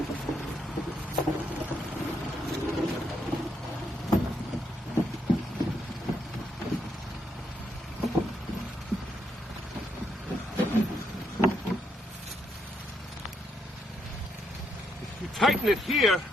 You tighten it here,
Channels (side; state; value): both; normal; correlation 0.77